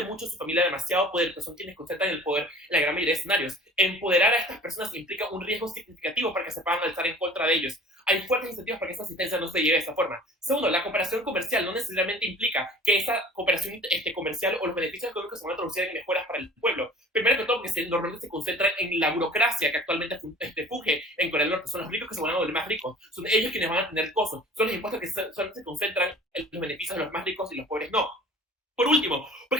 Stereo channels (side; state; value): both; normal; correlation 0.45